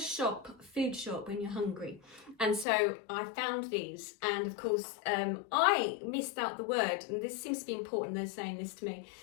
shop when you're hungry. And so I found these, and of course I missed out the word, and this seems to be important, they're saying this to me.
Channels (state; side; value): drops out; right; at 2.7 s